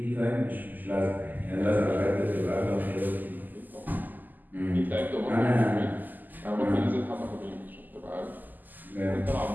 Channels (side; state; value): left; late; 0.085 ms